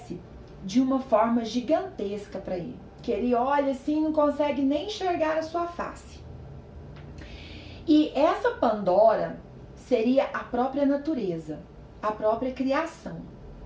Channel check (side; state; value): both; identical; correlation 1.00